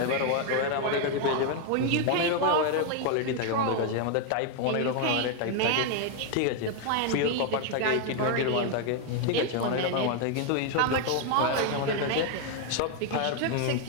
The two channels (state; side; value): different; both; correlation 0.01